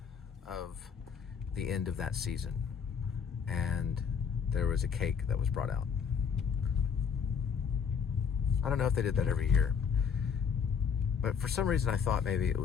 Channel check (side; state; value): right; quieter; 6.8 dB